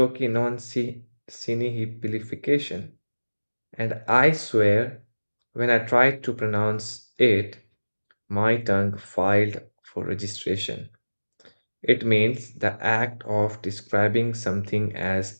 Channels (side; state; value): both; inverted; correlation -1.00